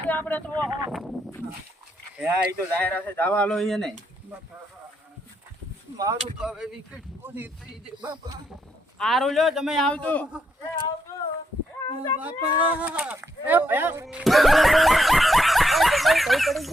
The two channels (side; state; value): both; normal; correlation 0.78